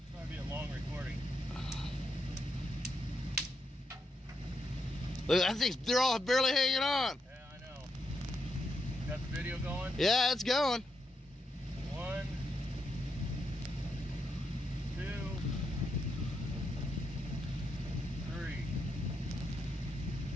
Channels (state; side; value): normal; both; correlation 0.81